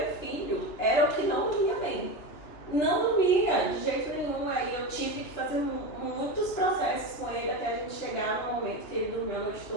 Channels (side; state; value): right; late; 2.9 ms